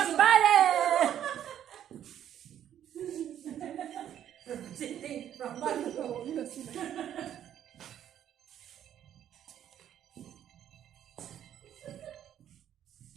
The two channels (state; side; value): quieter; left; 10.4 dB